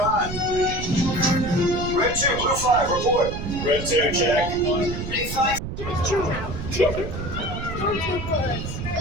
on. Red 2, Blue 5, report. Red 2, check.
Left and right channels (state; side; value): noise; right; rumble, 7 dB below the sound